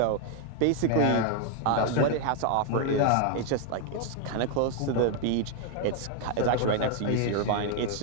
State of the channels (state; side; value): different; both; correlation 0.00